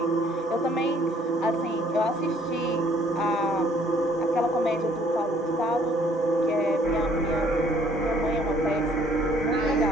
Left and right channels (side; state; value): both; normal; correlation 0.61